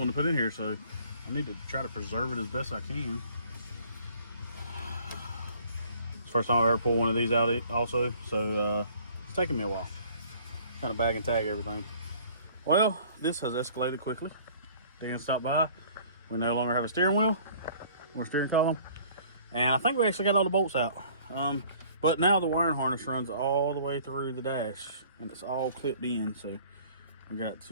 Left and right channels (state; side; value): inverted; both; correlation -0.53